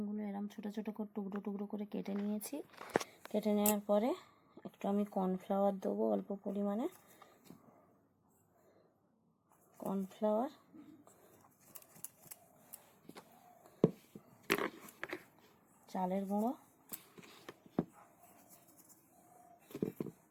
এরম ছোটো ছোটো করে টুকরো টুকরো করে কেটে নিয়েছি। কেটে নেওয়ার পরে একটু আমি কর্নফ্লাওয়ার দেবো, অল্প পরিমাণে কর্নফ্লাওয়ার, চালের গুঁড়ো,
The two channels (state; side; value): identical; both; correlation 1.00